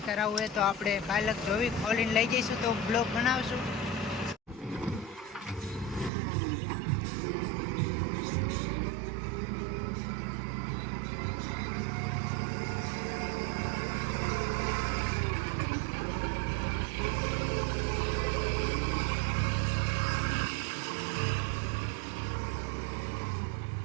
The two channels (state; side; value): drops out; left; at 6.1 s